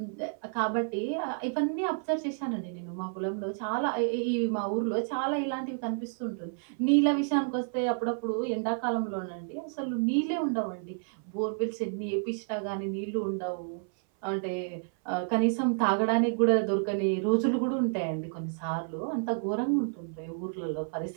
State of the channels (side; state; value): left; silent; 58 dB below the other